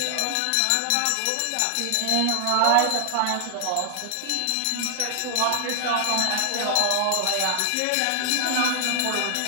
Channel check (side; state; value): both; different; correlation 0.00